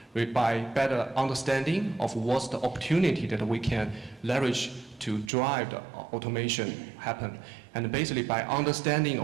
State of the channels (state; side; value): drops out; left; at 5.3 s